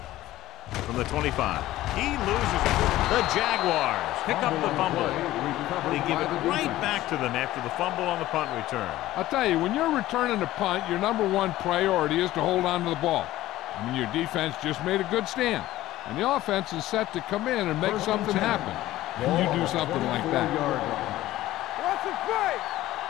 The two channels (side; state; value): right; quieter; 15.6 dB